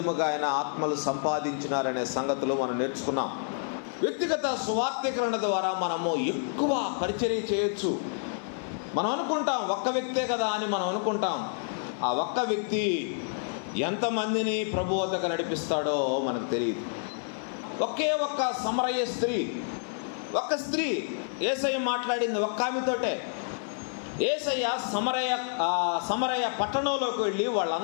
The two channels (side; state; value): right; silent; digital silence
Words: ఆయన ఆత్మలు సంపాదించినారనే సంగతులు మనం నేర్చుకున్నాం. వ్యక్తిగత సువార్తీకరణ ద్వారా మనము ఎక్కువ పరిచర్య చేయొచ్చు. మనం అనుకుంటాం ఒక్క వ్యక్తే కదా అని మనం అనుకుంటాం. ఆ ఒక్క వ్యక్తి ఎంతమందిని ప్రభు వద్దకు నడిపిస్తాడో మనకు తెలియదు. ఒకే ఒక్క సమరయ స్త్రీ, ఒక్క స్త్రీ యేసయ్య మాట్లాడింది ఒక్క ఆమెతోటే. యేసయ్య సమరయ పట్టణంలోకి వెళ్ళి